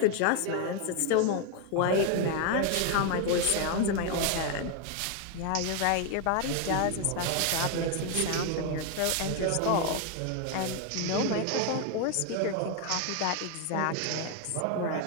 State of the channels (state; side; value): different; both; correlation 0.01